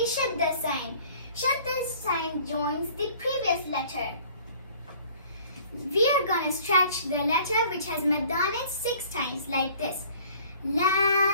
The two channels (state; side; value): inverted; both; correlation -0.52